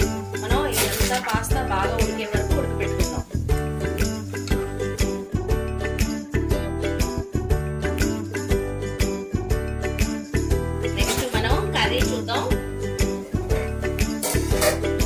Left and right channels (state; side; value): identical; both; correlation 1.00